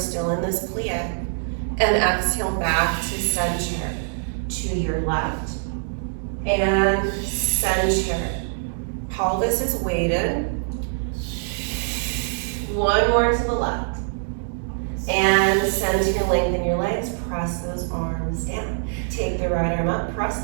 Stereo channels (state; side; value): silent; left; digital silence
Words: in this plie. And exhale back to center. To your left. And center. Pelvis is weighted. One more to the left. And center, lengthen your legs. Press those arms down. Take the right arm up. Press